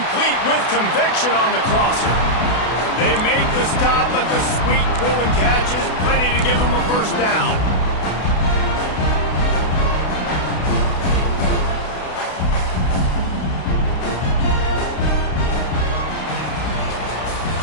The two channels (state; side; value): late; right; 32 ms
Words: with conviction on the crosser. They make the stop, but the sweet throw and catch is plenty to give them a first down.